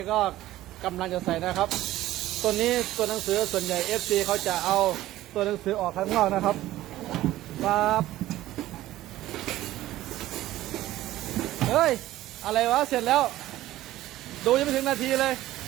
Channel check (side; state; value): left; quieter; 15.2 dB